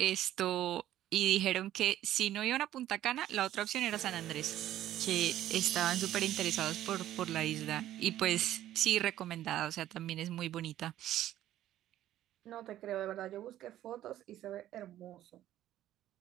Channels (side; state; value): left; quieter; 13.0 dB